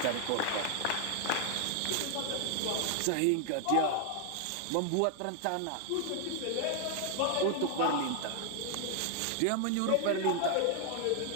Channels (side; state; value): both; different; correlation 0.00